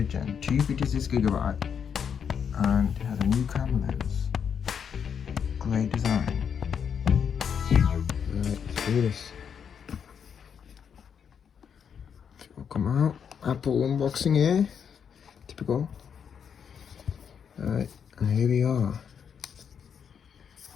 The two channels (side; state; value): right; quieter; 7.4 dB